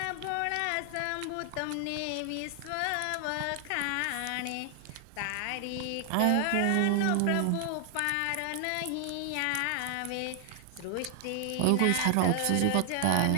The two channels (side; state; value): both; different; correlation 0.00